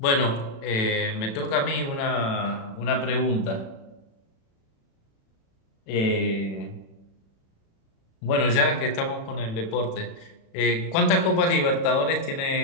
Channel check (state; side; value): late; right; 36 ms